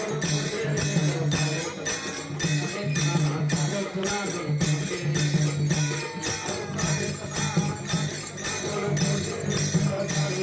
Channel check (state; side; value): identical; both; correlation 1.00